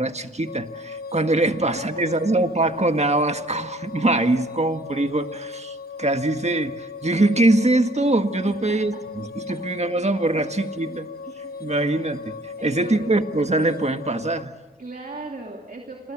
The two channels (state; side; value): normal; both; correlation 0.57